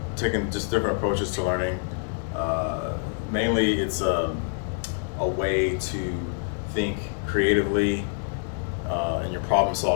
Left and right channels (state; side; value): silent; right; 57 dB below the other